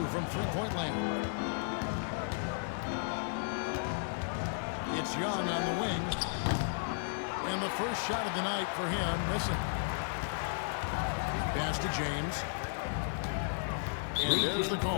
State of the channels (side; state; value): right; silent; 55 dB below the other